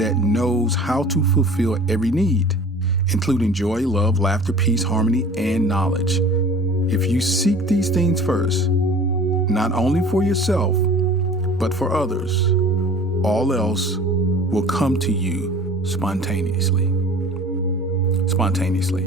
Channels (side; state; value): both; normal; correlation 0.44